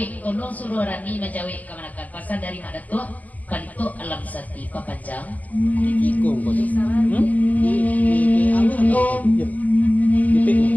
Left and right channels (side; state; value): right; late; 0.077 ms